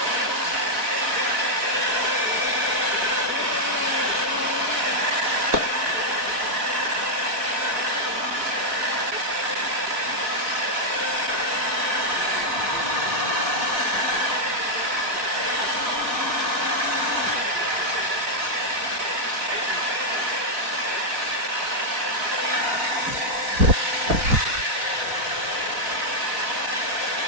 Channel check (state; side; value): late; left; 3.9 ms